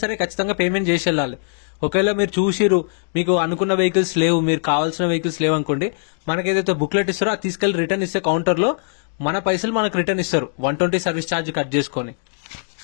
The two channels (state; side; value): silent; right; digital silence